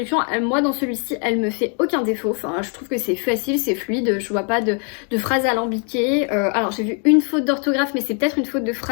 moi dans celui-ci, elle me fait aucun défaut. Enfin, je trouve que c'est facile, c'est fluide, je vois pas de phrases alambiquées. Alors j'ai vu une faute d'orthographe, mais c'est peut-être une faute de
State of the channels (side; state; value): right; quieter; 39.7 dB